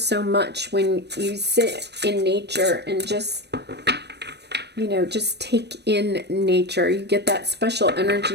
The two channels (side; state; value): left; late; 0.49 ms